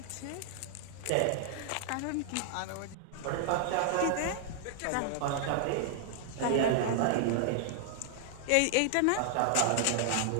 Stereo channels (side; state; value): both; different; correlation -0.01